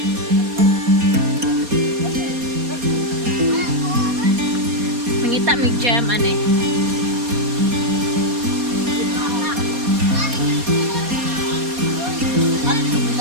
Mangita mig jam ane.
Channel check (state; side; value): late; left; 4.2 ms